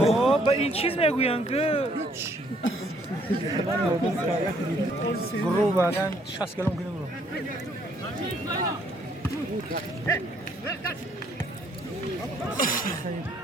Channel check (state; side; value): normal; both; correlation 0.66